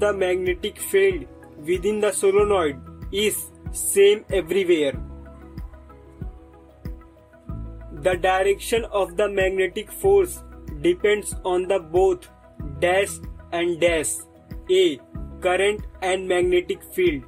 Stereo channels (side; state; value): both; identical; correlation 1.00